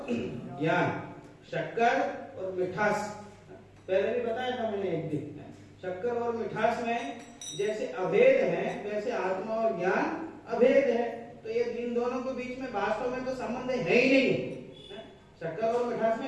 ज्ञान, शक्कर और मिठास, पहले भी बताया था मैंने एक दिन। शक्कर और मिठास में जैसे अभेद है वैसे आत्मा और ज्ञान अभेद है। तो ये इन दोनों के बीच में वास्तव में तो संबंध है ही नहीं। शक्कर और मिठास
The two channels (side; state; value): both; identical; correlation 1.00